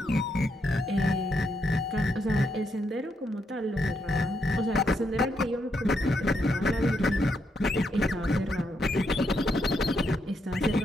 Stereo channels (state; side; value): normal; both; correlation 0.79